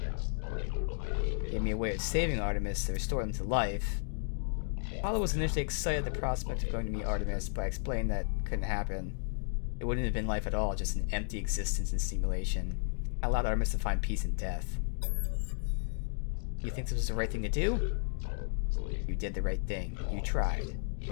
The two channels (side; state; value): right; silent; digital silence